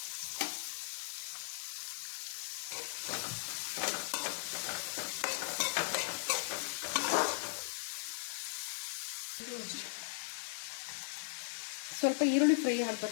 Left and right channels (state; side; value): silent; right; digital silence